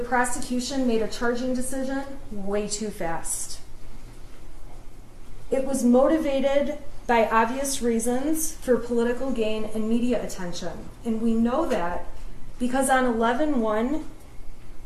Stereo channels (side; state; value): both; identical; correlation 1.00